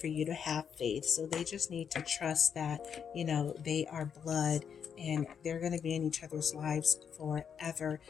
you to have faith. So they just need to trust that, they are blood and they're going to be in each other's lives forever.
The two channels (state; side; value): quieter; right; 7.5 dB